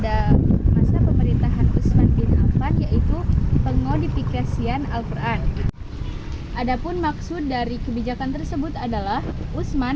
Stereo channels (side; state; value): both; identical; correlation 1.00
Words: masa pemerintahan Utsman bin Affan yaitu pengodifikasian Al-Quran. Adapun maksud dari kebijakan tersebut adalah